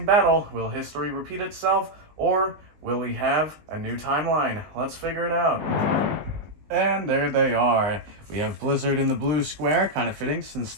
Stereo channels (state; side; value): late; left; 20 ms